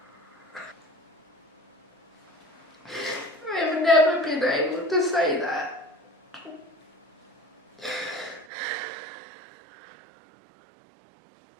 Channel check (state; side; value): drops out; left; at 8.5 s